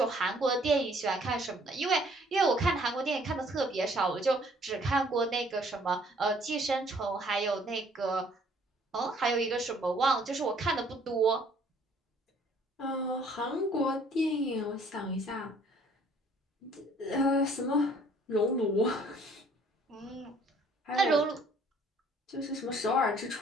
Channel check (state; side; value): normal; both; correlation 0.59